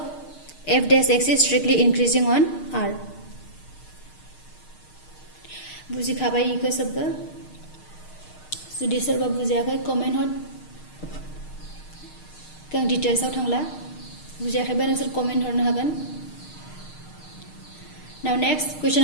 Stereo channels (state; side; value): late; right; 6.5 ms